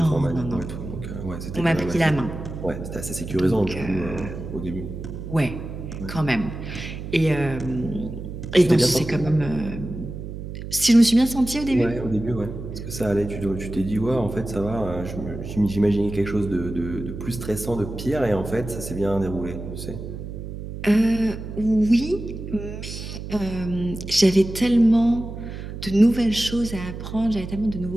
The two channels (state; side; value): noise; right; hum, 9 dB below the sound